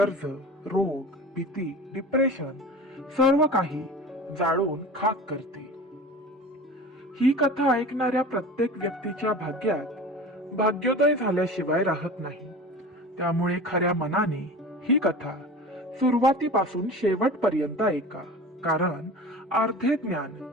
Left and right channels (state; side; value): normal; both; correlation 0.36